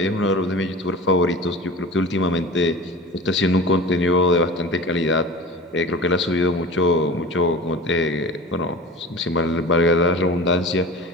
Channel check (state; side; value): normal; both; correlation 0.36